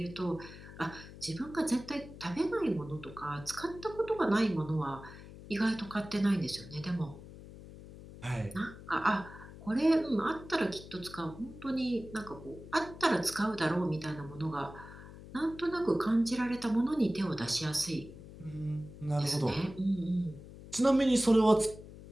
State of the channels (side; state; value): left; noise; hum, 16 dB below the sound